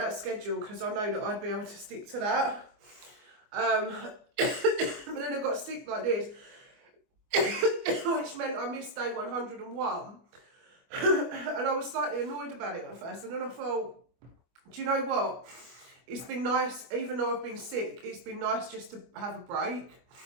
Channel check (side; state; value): left; late; 24 ms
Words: schedule because I know that I'd be able to stick to that. But then I got sick like this, which meant I missed day 101. And I was slightly annoyed about it at first. And then I thought, do you know what? It's been nice, even though I've been sick, it's been nice just to have a break